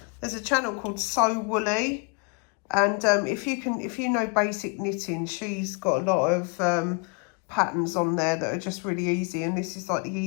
a channel called So Woolly. And if you know basic knitting, she's got a lot of patterns on there that are just really easy. And this is like the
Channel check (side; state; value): right; quieter; 33.9 dB